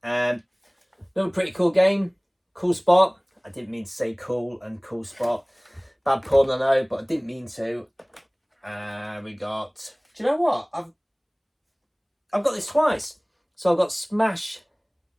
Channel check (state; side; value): identical; both; correlation 1.00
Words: Another pretty cool game, cool spot. I didn't mean to say cool and cool spot. Bad pun, I know, but I didn't mean to. We got, do you know what? I've got this twice. So I've got Smash